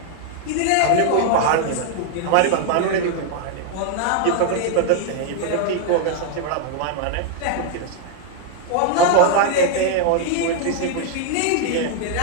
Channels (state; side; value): different; both; correlation 0.00